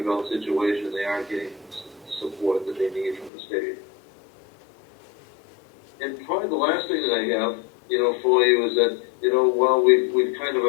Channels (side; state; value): right; drops out; at 3.3 s